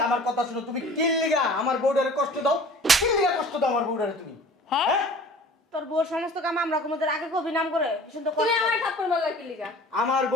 আমার কথা শুনো, তুমি কিল্লিগা আমার বউডারে কষ্ট দাও, কিল্লিগা কষ্ট দাও আমার বউডারে তুমি। হ্যাঁ হ্যাঁ তোর বউর সমস্ত কাম আমরা কোমদের আগে কবি নাম করে শুনতে তুমি কষ্ট। আমার থাপ্পড় মারলা কি লিগা? আমার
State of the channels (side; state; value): both; normal; correlation 0.45